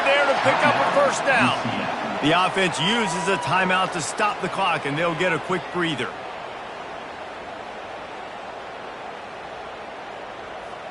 there to pick up a first down. The offense uses a timeout to stop the clock, and they'll get a quick breather.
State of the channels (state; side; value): identical; both; correlation 1.00